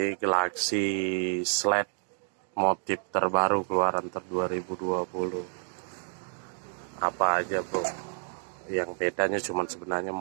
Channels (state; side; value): silent; left; digital silence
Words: Galaxy Sled motif terbaru keluaran 2020. Apa aja bro? Yang bedanya cuman sebenarnya